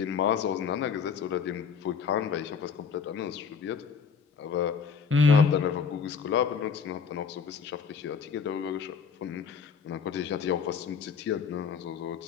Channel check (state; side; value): quieter; right; 6.1 dB